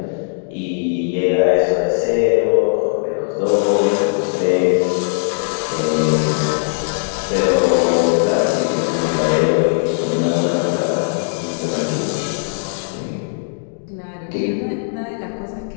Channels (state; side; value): silent; right; digital silence